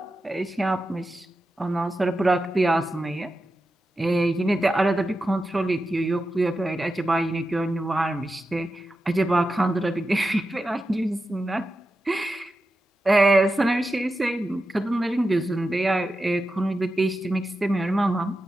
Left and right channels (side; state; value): both; normal; correlation 0.91